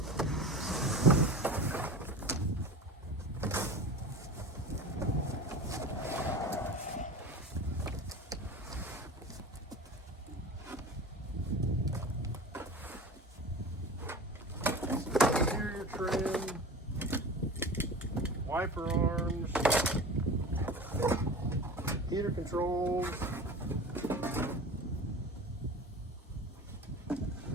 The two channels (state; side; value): normal; both; correlation 0.34